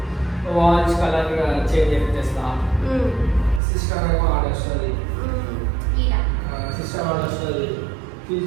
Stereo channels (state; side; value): drops out; left; at 3.6 s